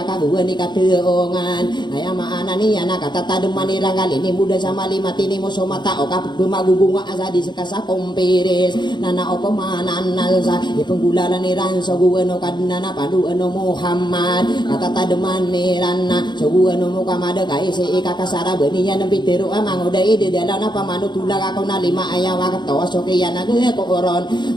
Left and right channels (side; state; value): right; late; 0.21 ms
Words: kaguan ni kateongan ayama anani anak kata tademani rangal ini muda sama lima tini muso mata oka bemagubunga asa di sekasa komperes nana opo manana sa ipenggulalan ni ranso guano kadnana padu ano Muhammad kata tademani rana so guano mukamada kai se ikakasara beniya nempiteru amangoda ide dalana pamanu tulang ako na lima ayawa katawa sokeyana ge koron